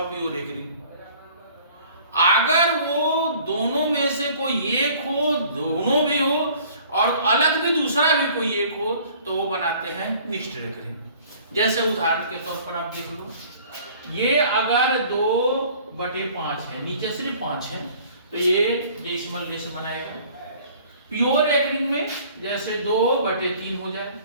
प्योर रेकरिंग। अगर वो दोनों में से कोई एक हो, दोनों भी हो और अलग भी दूसरा भी कोई एक हो, तो वो बनाते हैं मिक्स्ड रेकरिंग। जैसे उदाहरण के तौर पर आप देख लो, ये अगर 2/5 है, नीचे सिर्फ 5 है, तो ये डेसिमल लेस बनाएगा। प्योर रेकरिंग में जैसे 2/3 हो जाए,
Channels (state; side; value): inverted; both; correlation -0.52